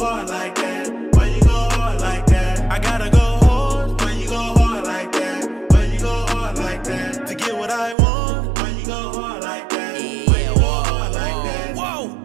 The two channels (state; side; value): drops out; left; at 8.0 s